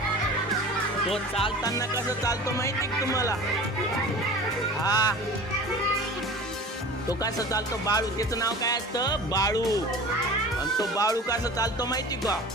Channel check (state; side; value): normal; both; correlation 0.39